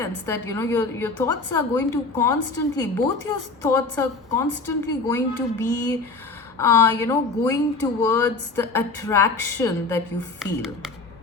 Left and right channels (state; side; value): quieter; right; 3.8 dB